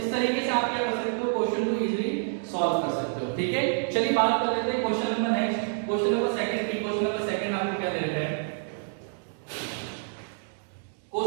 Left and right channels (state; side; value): silent; left; digital silence